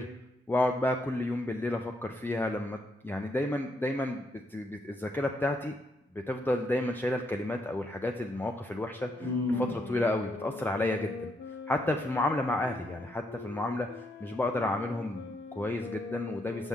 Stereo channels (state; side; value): normal; both; correlation 0.76